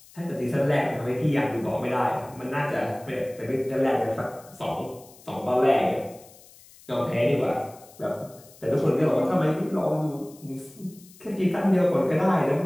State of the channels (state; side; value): noise; left; hiss, 24 dB below the sound